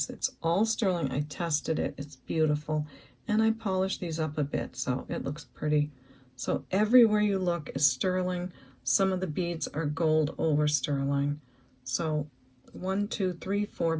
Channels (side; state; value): both; identical; correlation 1.00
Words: It's all sterling. I tested it. It's beautiful, and I polished these up a bit, so it looks pretty. So everywhere you look is sterling. Some of the beads are gold over sterling. So 1, 2, 3, 4